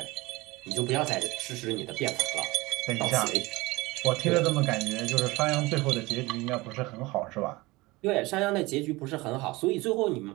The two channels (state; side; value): quieter; left; 21.8 dB